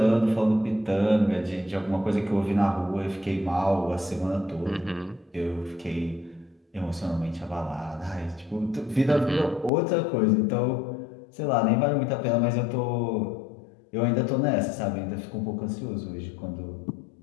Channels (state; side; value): drops out; right; at 9.7 s